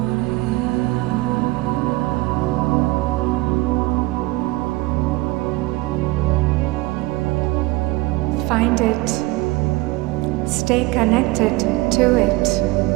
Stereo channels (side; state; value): left; quieter; 20.3 dB